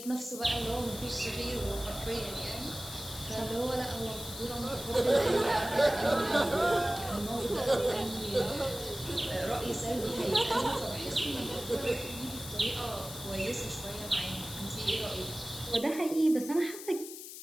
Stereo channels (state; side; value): noise; left; hiss, 11 dB below the sound